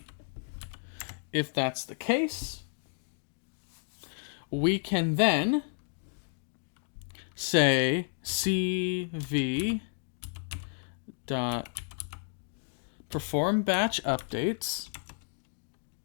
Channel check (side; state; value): right; silent; digital silence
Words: If that's the case, we can then say cv dot perform batch updates